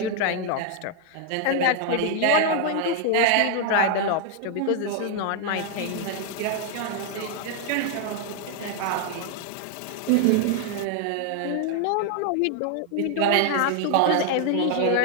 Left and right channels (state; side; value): different; both; correlation 0.00